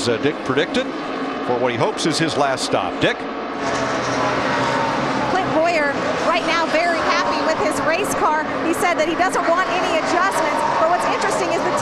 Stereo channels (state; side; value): identical; both; correlation 1.00